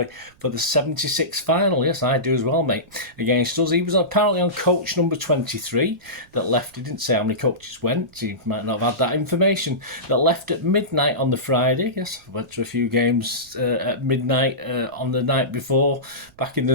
for the 76 final. Yes, I do as well, mate, against us. He was apparently on coach number 23 that left. He didn't say how many coaches went. He might not have had that information. That left at midnight on the Friday. Yes, I went to a few games at midnight on the night before, back in the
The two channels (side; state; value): right; noise; rumble, 29 dB below the sound